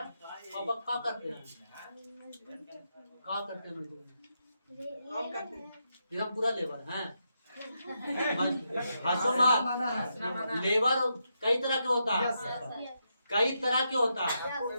अब क्या करते हैं? क्या करते हैं? हम पूरा लेबर हैं। हंसो मत। लेबर कई तरह के होता है, कई तरह के होता है।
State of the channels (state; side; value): inverted; both; correlation -0.83